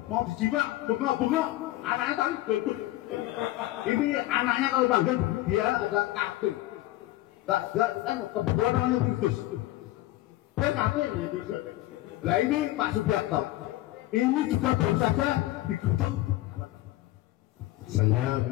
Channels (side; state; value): right; quieter; 16.5 dB